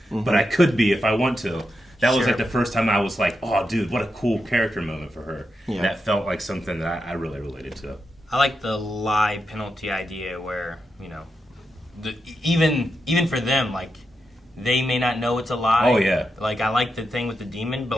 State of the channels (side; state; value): both; normal; correlation 0.86